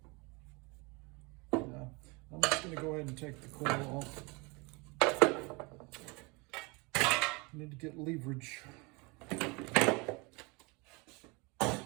I'm just going to go ahead and take the coil off. I need to get leverage.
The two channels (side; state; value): left; quieter; 28.0 dB